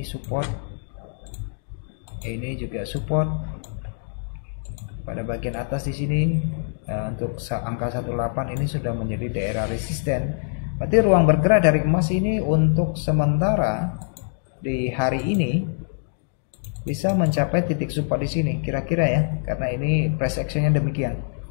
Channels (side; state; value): right; silent; digital silence